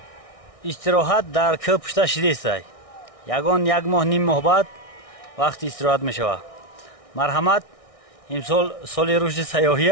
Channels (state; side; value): late; right; 1.6 ms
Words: استراحت در که پشت شده است یکان یک ماه نیم ماه بعد وقتی استراحت می شود مرحمت امسال سال رشد سیاحی